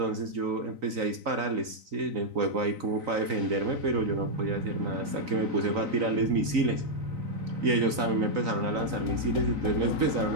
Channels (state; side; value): late; left; 3.9 ms